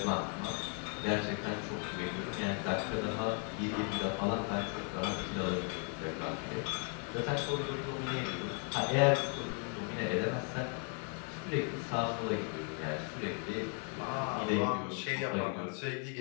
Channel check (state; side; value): quieter; right; 36.2 dB